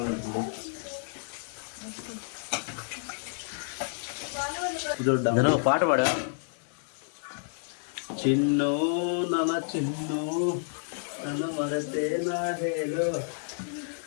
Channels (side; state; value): right; silent; digital silence